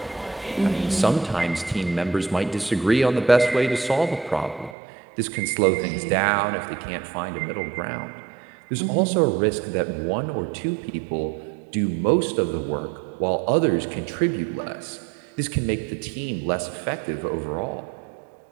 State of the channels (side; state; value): left; drops out; at 4.8 s